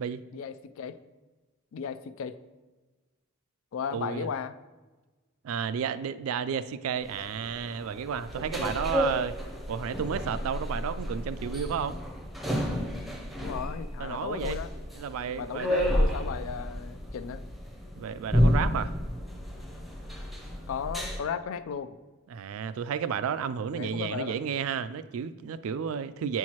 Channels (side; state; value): both; normal; correlation 0.40